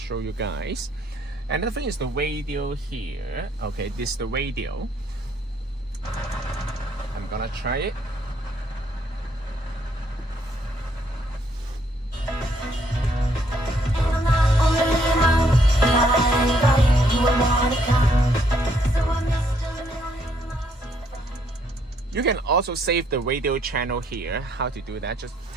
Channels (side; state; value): both; normal; correlation 0.70